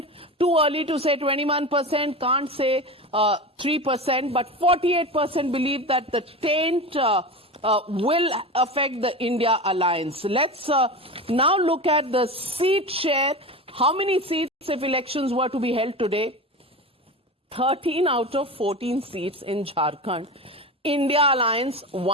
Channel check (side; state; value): both; normal; correlation 0.26